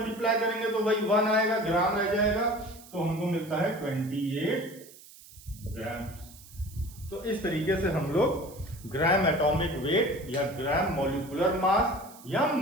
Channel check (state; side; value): noise; right; hiss, 20 dB below the sound